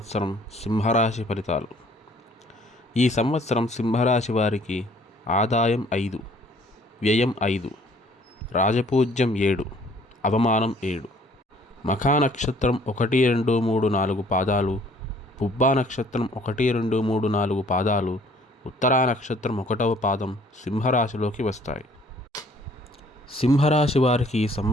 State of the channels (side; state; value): both; normal; correlation 0.58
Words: సింహరాశి ఫలితాలు. ఈ సంవత్సరం సింహరాశి వారికి ఆదాయం 5, వ్యయం 5, రాజపూజ్యం 7, అవమానం 7. మఖా నక్షత్రం 1, 2, 3, 4 పాదాలు, పుబ్బా నక్షత్రం 1, 2, 3, 4 పాదాలు, ఉత్తరా నక్షత్రం 1వ పాదం సింహరాశిలోకి వస్తాయి. సింహరాశి వారికి ఈ